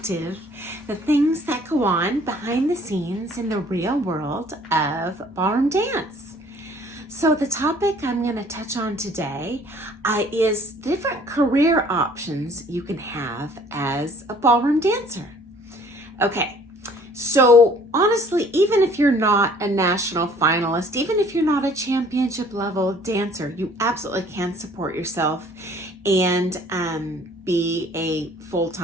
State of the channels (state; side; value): normal; both; correlation 0.55